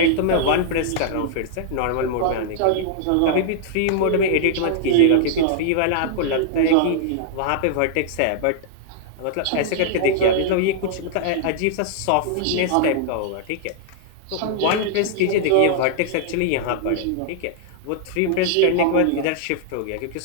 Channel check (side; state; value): both; different; correlation -0.01